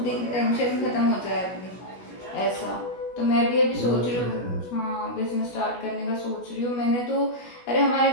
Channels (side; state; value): right; late; 16 ms